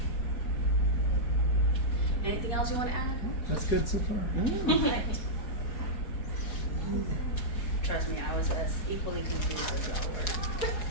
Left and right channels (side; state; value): right; late; 4.7 ms